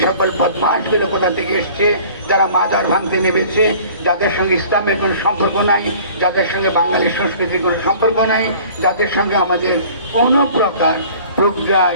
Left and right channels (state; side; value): inverted; both; correlation -0.48